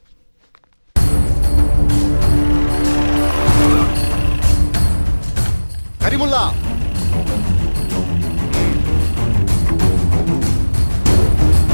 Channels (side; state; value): both; inverted; correlation -1.00